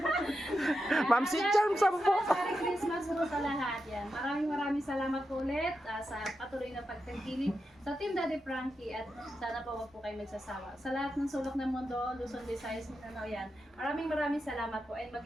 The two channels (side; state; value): both; normal; correlation 0.88